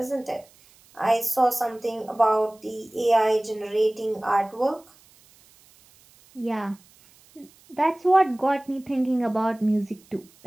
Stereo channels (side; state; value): right; noise; hiss, 28 dB below the sound